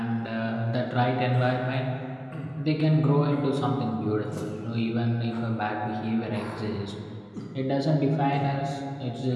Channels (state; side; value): identical; both; correlation 1.00